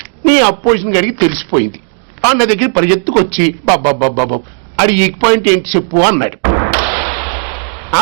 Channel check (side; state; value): left; silent; digital silence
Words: నీ అపోజిషన్ గడికి తెలిసిపోయింది. అన్న దగ్గర పరిగెత్తుకొచ్చి బాబా అది వీక్ పాయింట్ ఏంటి చెప్పు అన్నాడు. ఆ